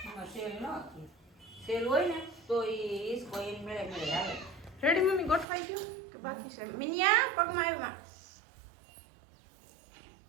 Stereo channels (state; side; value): drops out; left; at 5.5 s